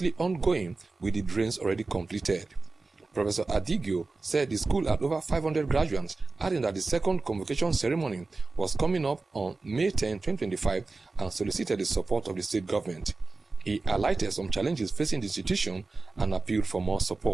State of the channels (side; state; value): left; quieter; 3.6 dB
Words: ongoing with the drains already completed. Professor Adigio said the school had over 500 graduates, adding that the second convocation ceremony was coming up on May 10, 2025, and solicited the support of the state government. He highlighted some challenges facing the institution and appealed for more